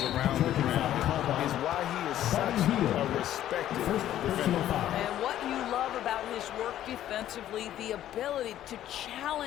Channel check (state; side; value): quieter; right; 12.3 dB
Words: around the ground is why he is such a respected defender. And what you love about his work defensively, the ability to